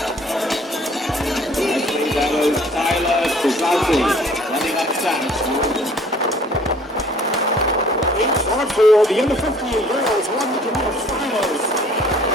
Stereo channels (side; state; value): both; normal; correlation 0.55